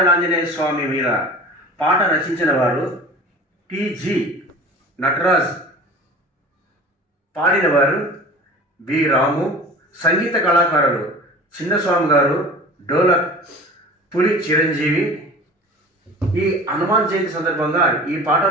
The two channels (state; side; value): normal; both; correlation 0.39